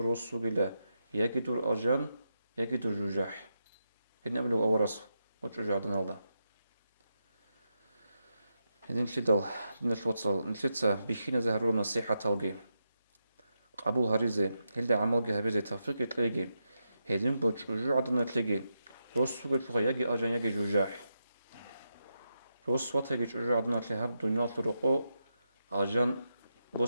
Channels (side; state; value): both; inverted; correlation -0.86